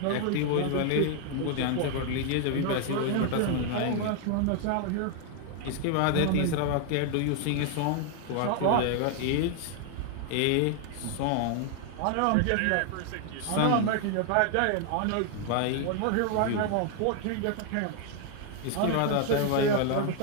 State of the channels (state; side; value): different; both; correlation 0.00